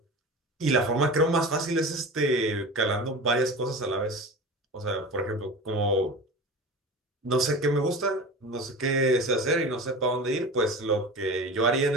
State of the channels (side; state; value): both; normal; correlation 0.32